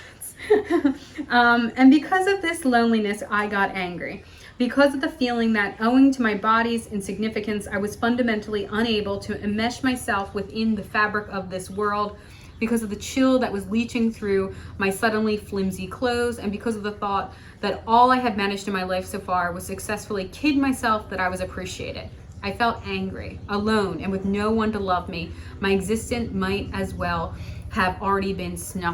And because of this loneliness, I got angry. Because of the feeling that, owing to my body's insignificance, I was fundamentally unable to enmesh myself within the fabric of this world, because of the chill that was leaching through my suddenly flimsy clothes, and because of the thought that all I had managed in my life so far was successfully kid myself that I was appreciated. I felt angry, alone, and with no one to love me. My existence might as well have already been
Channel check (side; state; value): both; identical; correlation 1.00